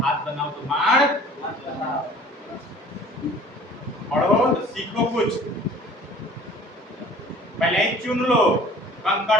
बनाओ तो माड़ पढ़ो तो सीखो कुछ, पहले ही चुन लो, कंकड़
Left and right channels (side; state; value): both; normal; correlation 0.48